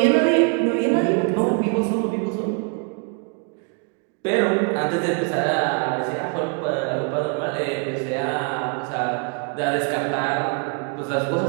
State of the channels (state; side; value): quieter; left; 36.4 dB